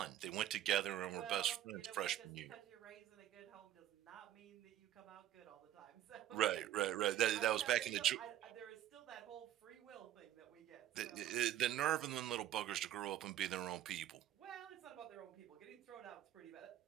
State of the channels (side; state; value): left; quieter; 12.3 dB